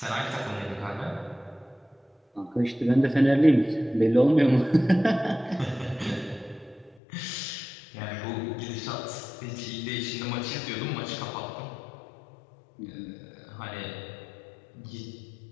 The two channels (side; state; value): right; drops out; at 7.0 s